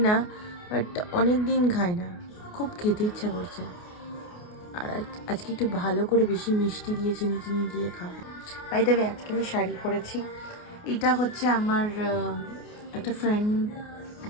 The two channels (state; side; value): late; right; 28 ms